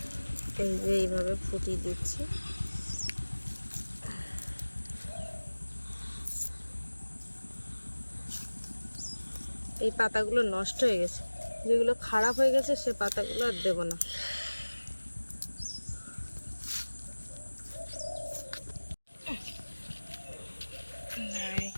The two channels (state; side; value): inverted; both; correlation -1.00